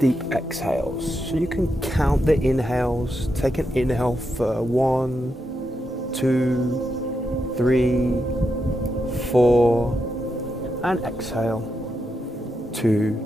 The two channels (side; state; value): both; normal; correlation 0.85